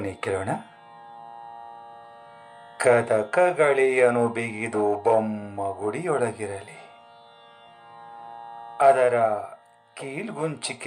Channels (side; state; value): both; identical; correlation 1.00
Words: ಕೇಳೋಣ. ಕದಕಗಳಿಯನು ಬಿಗಿದು ಬೊಮ್ಮ ಗುಡಿಯೊಳಗಿರಲಿ, ಅದರ